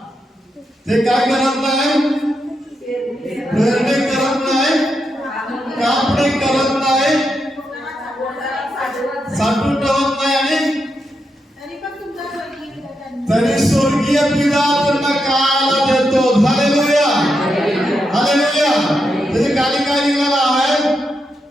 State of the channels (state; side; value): normal; both; correlation 0.84